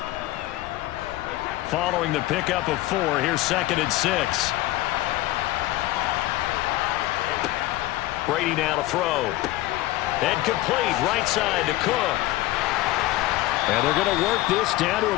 Following the pickup of 4, here's 2nd and 6. Brady now to throw. And complete right side to Cook. And they're going to work this down to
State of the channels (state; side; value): quieter; right; 16.8 dB